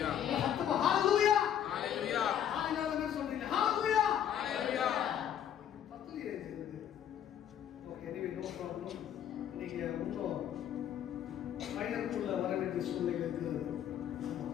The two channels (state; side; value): quieter; right; 9.8 dB